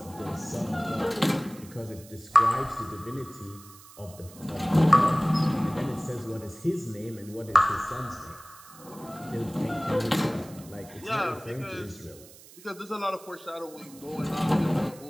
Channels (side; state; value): right; noise; hiss, 20 dB below the sound